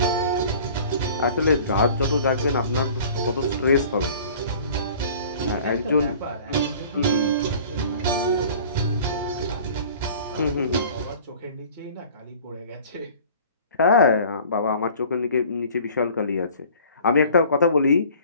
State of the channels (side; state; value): both; inverted; correlation -0.47